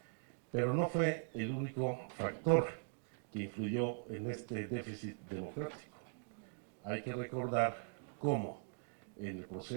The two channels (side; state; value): left; silent; digital silence